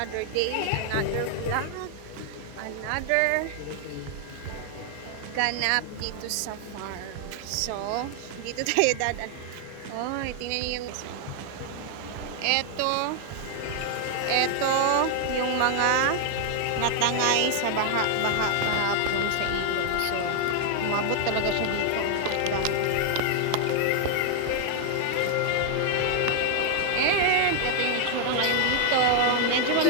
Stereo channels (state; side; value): different; both; correlation 0.00